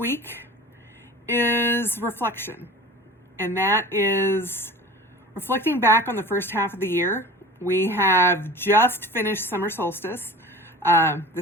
is reflection, and that is reflecting back on the first half of the year. We have just finished summer solstice.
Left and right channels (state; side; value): normal; both; correlation 0.38